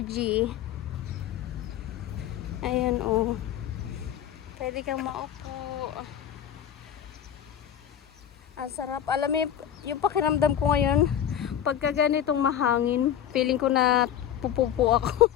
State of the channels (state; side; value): quieter; right; 9.9 dB